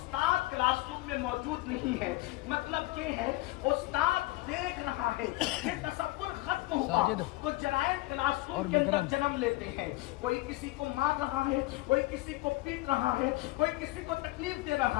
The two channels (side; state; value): right; quieter; 19.7 dB